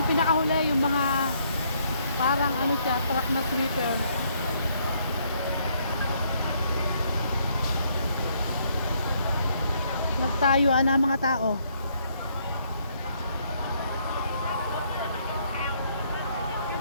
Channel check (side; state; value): both; inverted; correlation -0.69